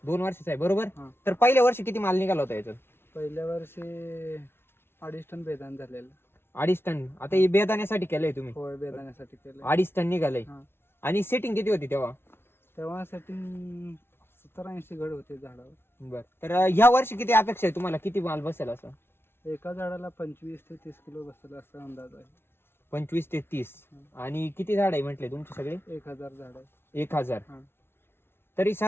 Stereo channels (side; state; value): right; late; 0.12 ms